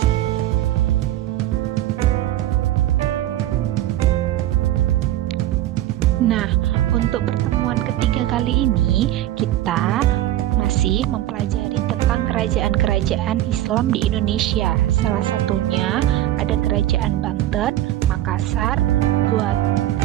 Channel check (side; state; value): left; quieter; 13.9 dB